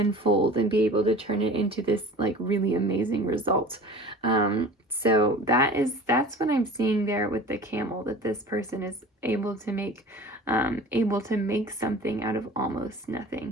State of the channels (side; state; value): both; normal; correlation 0.40